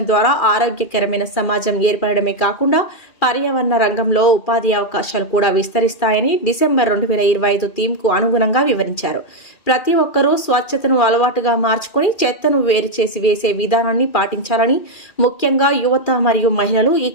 ద్వారా ఆరోగ్యకరమైన సమాజం ఏర్పడమే కాకుండా పర్యావరణ రంగంలో ఉపాధి అవకాశాలు కూడా విస్తరిస్తాయని డిసెంబర్ 2025 థీమ్కు అనుగుణంగా వివరించారు. ప్రతి ఒక్కరూ స్వచ్ఛతను అలవాటుగా మార్చుకొని చెత్తను వేరు చేసి వేసే విధానాన్ని పాటించాలని, ముఖ్యంగా యువత మరియు మహిళలు ఈ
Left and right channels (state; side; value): late; right; 2.4 ms